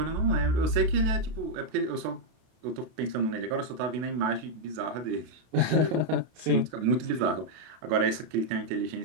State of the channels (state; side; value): late; left; 32 ms